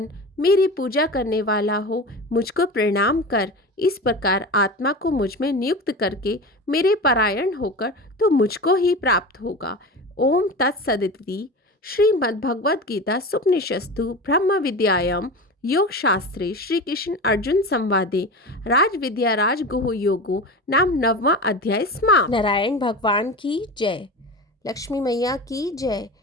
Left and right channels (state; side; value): normal; both; correlation 0.29